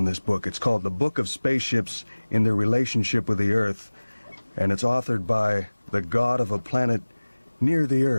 this book. It's called The Book of Spaceships in Their Relationship with the Earth, and it's authored by the god of a planet near the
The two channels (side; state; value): both; inverted; correlation -1.00